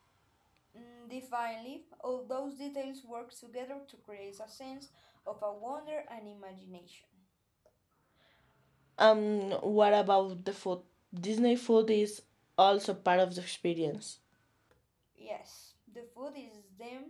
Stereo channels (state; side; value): identical; both; correlation 1.00